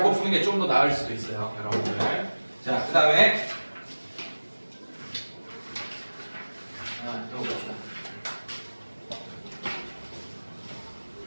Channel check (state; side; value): inverted; both; correlation -1.00